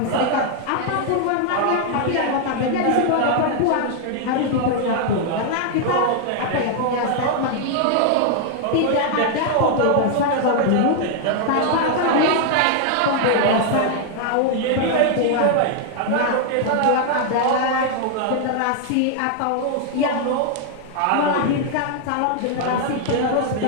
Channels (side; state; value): both; different; correlation 0.00